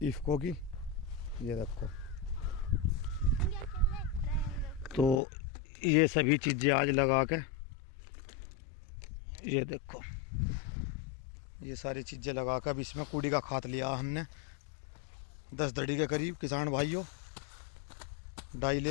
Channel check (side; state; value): right; drops out; at 5.2 s